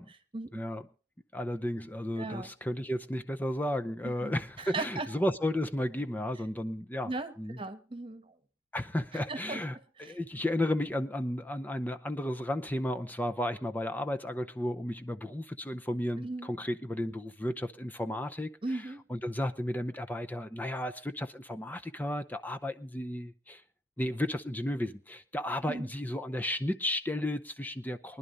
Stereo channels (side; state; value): both; normal; correlation 0.81